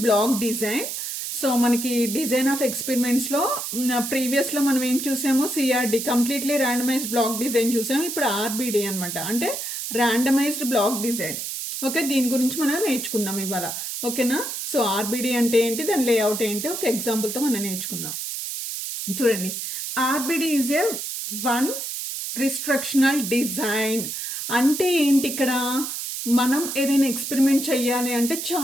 block design. సో మనకి డిజైన్ ఆఫ్ ఎక్స్పెరిమెంట్స్లో ప్రీవియస్లో మనం ఏం చూసాము? CRD, completely randomized block design చూసాము. ఇప్పుడు ఆర్బిడి అనమాట, అంటే ర్యాండమైజ్డ్ బ్లాక్ డిజైన్. ఓకే, దీని గురించి మనం నేర్చుకుందాం ఇవాళ. ఓకేనా? సో ఆర్బిడి అంటే ఏంటి, దాని లేఅవుట్ ఏంటి, ఒక ఎగ్జాంపుల్తో మనం నేర్చుకుందాం. చూడండి, RBD is a one restrictional design. అంటే ఏంటి? ఇక్కడ మనం ఏదైనా ఎక్స్పెరిమెంట్ చెయ్యాలి అంటే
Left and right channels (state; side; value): noise; right; hiss, 5 dB below the sound